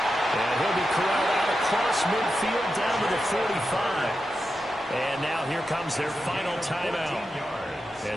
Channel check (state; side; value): normal; both; correlation 0.89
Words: And he'll be corralled out across midfield down to the 45. And now here comes their final timeout,